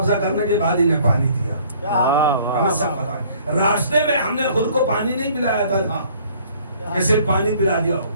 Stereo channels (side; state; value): both; inverted; correlation -0.57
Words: کرنے کے بعد انہیں پانی دیا. ہمیں سب پتا ہے. راستے میں ہم نے خود کو پانی نہیں پلایا تھا, کہ صرف پانی پلا دیا ہو.